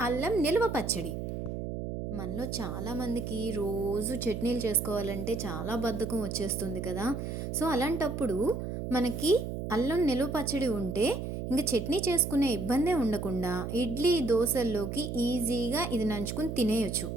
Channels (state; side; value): noise; right; hum, 5 dB below the sound